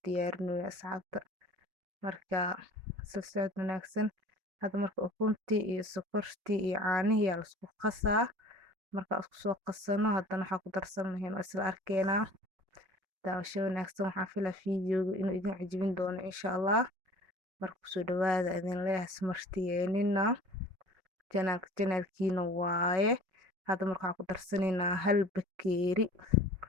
diyaarinayo asxaabta marka isla socod wanaagsan hadda marka ukuntii iyo sokortii iyo caanihii la isku qasaa marka isku soo qasano hadana waxa ku darsan lahayn isla arkeena daawasho wanaagsan waxaan filaa fiidiyowga inuu idin cajibin doono insha Allah marka soo dhawaada idin leeyahay smartiyeenina channelkiina waaye hadda marka waxa ku darsanaynaa 1 bakeeri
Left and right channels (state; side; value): late; left; 5.4 ms